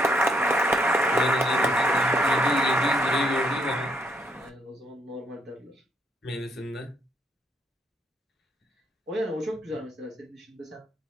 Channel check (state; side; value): normal; both; correlation 0.73